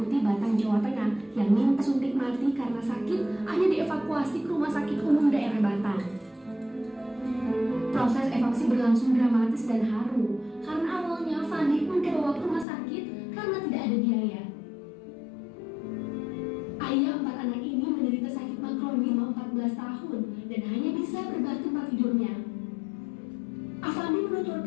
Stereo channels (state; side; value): drops out; right; at 12.7 s